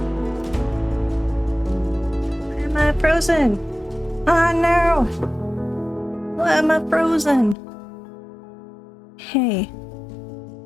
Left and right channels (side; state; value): right; drops out; at 7.6 s